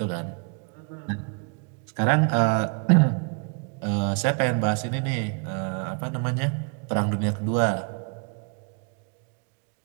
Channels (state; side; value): quieter; left; 38.2 dB